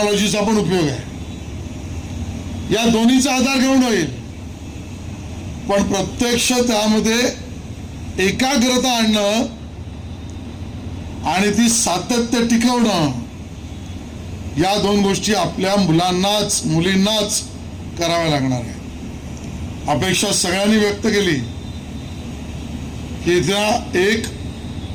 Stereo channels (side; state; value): both; identical; correlation 1.00